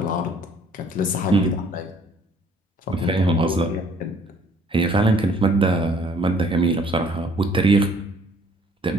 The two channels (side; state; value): both; normal; correlation 0.59